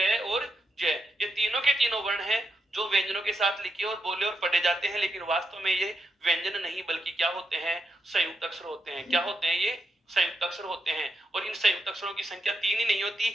और जय, ये तीनों के तीनों वर्ण हैं जो व्यंजनों के साथ लिखे और बोले और पढ़े जाते हैं, लेकिन वास्तव में ये व्यंजन नहीं बल्कि क्या होते हैं, संयुक्त अक्षर होते हैं। क्या होते हैं ये? संयुक्त अक्षर होते हैं। और इन संयुक्त अक्षरों की संख्या 3 ही नहीं होती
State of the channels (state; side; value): normal; both; correlation 0.84